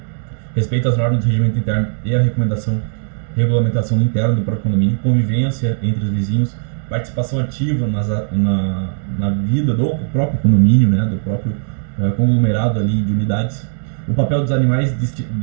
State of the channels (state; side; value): silent; left; 68 dB below the other